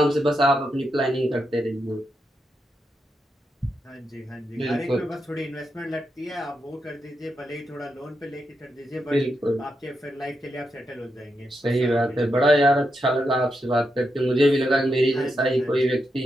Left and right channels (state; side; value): normal; both; correlation 0.84